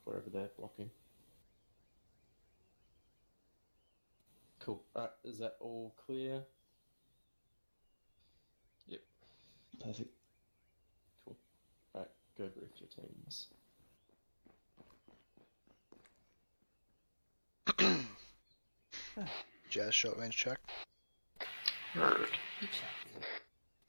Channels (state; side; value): inverted; both; correlation -1.00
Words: wherever they're blocking. Cool. Alright, is that all clear? Yep. Perfect. Cool. Alright, go brief your teams. Jazz short range check.